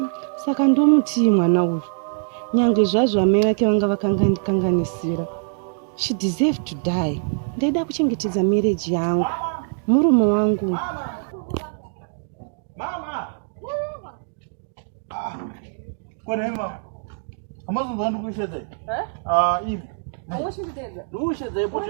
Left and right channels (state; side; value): silent; left; digital silence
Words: Saka ndomutii mwana uyu. Nyangwe zvazvo mai vake vanga vakanganisira. She deserved to die. Ndaida kuchengetedza marriage yangu. Murume wangu. Mama. Kone mama. Amazonzwa ndikushedza. Ivi. Awushidedza. Ndushedza